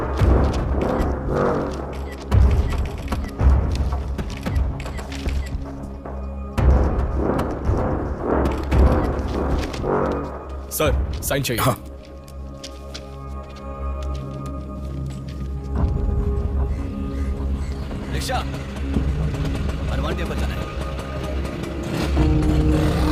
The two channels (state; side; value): identical; both; correlation 1.00